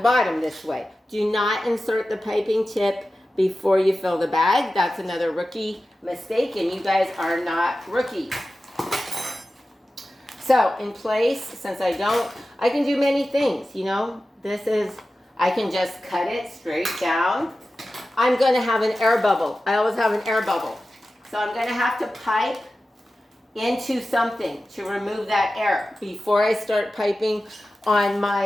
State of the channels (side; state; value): both; normal; correlation 0.94